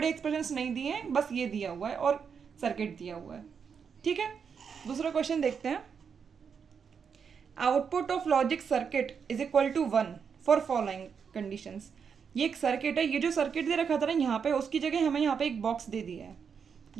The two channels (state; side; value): quieter; left; 6.6 dB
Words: एक्सप्रेशंस नहीं दिए हैं, बस ये दिया हुआ है और सर्किट दिया हुआ है, ठीक है। दूसरा क्वेश्चन देखते हैं, output of logic circuit is equal to 1 for following conditions. ये एक सर्किट है, ये जो सर्किट दे रखा था ना यहाँ पे, उसकी जगह हमें यहाँ पे एक बॉक्स दे दिया है।